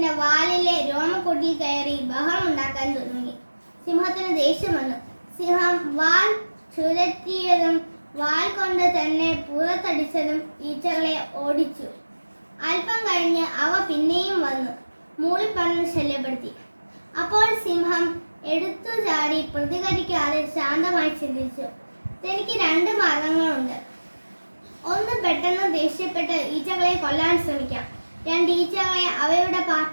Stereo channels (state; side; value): inverted; both; correlation -1.00